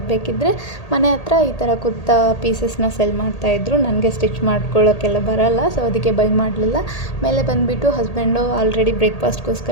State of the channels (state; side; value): late; right; 1.8 ms